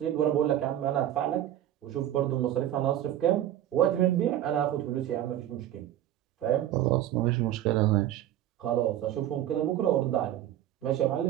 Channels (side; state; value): left; quieter; 12.3 dB